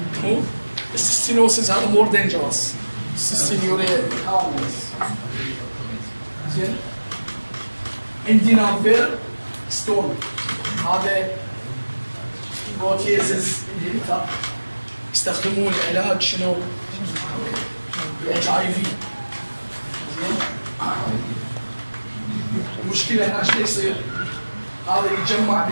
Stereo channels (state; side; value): inverted; both; correlation -1.00